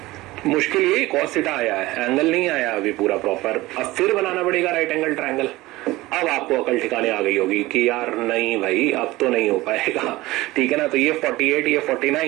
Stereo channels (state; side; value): quieter; left; 19.0 dB